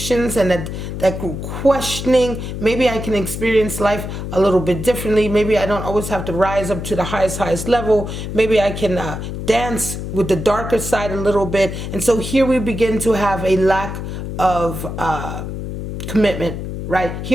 and that questioning. Maybe I can experience life a little bit differently. Maybe I don't always have to rise up to the highest level. Maybe I can dance with the darker side a little bit. And so here we begin to have a lack of commitment, right?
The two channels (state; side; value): noise; left; hum, 6 dB below the sound